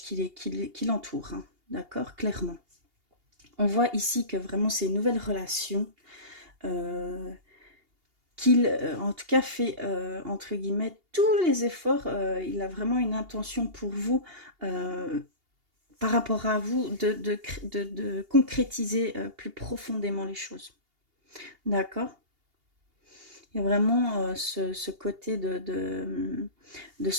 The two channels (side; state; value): left; late; 2.8 ms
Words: l'entourent, hein, d'accord, clairement. On voit ici que vraiment c'est une nouvelle relation euh, qu'il, en tout cas, fait, entre guillemets, tous les efforts. Il a vraiment une intention pour vous, par rapport à vous, de concrétiser plus profondément les choses. D'accord. Il y a vraiment ce côté de